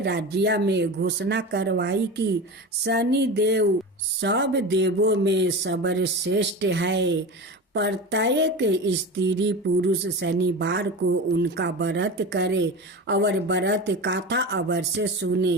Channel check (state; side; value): normal; both; correlation 0.28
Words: राज्य में घोषणा करवाई कि शनि देव सब देवों में सर्वश्रेष्ठ है। प्रत्येक स्त्री पुरुष शनिवार को उनका व्रत करे और व्रत कथा अवश्य सुने।